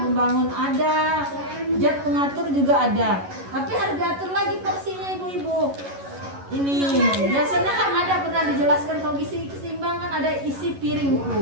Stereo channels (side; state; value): left; late; 11 ms